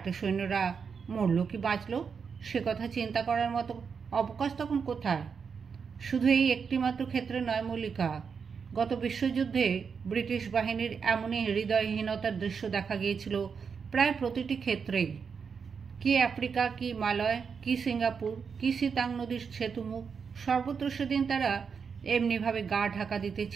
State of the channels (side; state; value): left; quieter; 6.1 dB